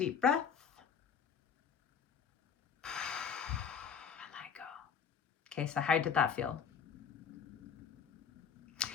breath. And I go. Okay, so how did that feel?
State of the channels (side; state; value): right; quieter; 7.0 dB